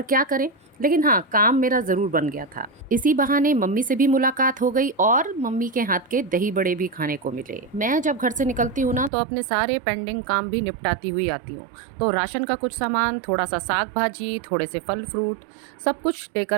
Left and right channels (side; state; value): left; drops out; at 9.1 s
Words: क्या करें, लेकिन हाँ, काम मेरा ज़रूर बन गया था। इसी बहाने मम्मी से भी मुलाकात हो गई और मम्मी के हाथ के दही बड़े भी खाने को मिले। मैं जब घर से निकलती हूँ ना, तो अपने सारे पेंडिंग काम भी निपटाती हुई आती हूँ। तो राशन का कुछ सामान, थोड़ा सा साग भाजी, थोड़े से फल फ्रूट, सब कुछ